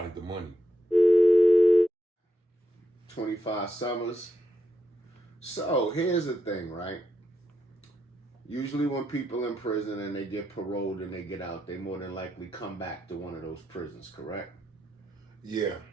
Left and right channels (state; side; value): normal; both; correlation 0.82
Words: the money. 25 summers. So here's the thing, right? Usually when people in prison and they get paroled and they get out, they more than likely come back to one of those prisons, correct? Yeah.